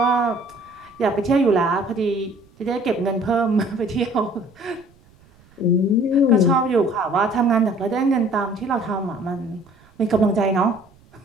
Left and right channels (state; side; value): noise; right; rumble, 29 dB below the sound